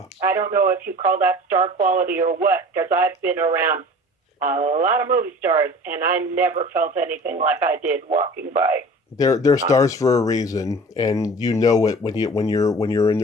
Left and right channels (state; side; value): normal; both; correlation 0.42